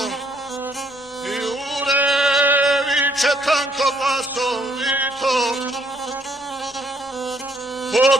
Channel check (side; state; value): both; normal; correlation 0.68